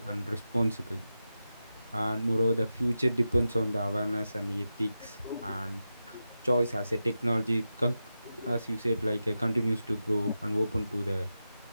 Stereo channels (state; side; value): inverted; both; correlation -0.91